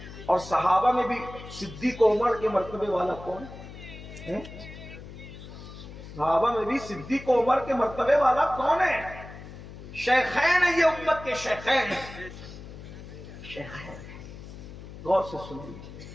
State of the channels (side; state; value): left; noise; hum, 14 dB below the sound